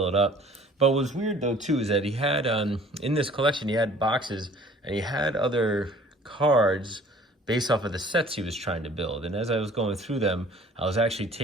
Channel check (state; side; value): normal; both; correlation 0.52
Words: it up. But what was weird though too is that he had, in this collection, he had boxes and he had other cards based off of the sets he was trying to build. And as I was going through them, I was actually